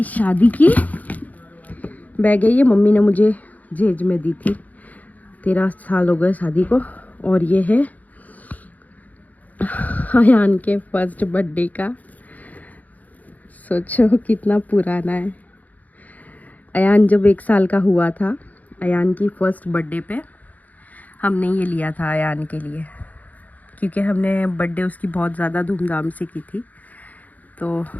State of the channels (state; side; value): late; right; 0.078 ms